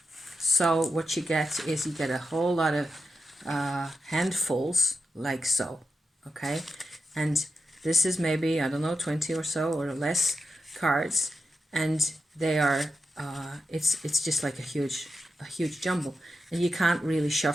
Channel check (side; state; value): both; normal; correlation 0.89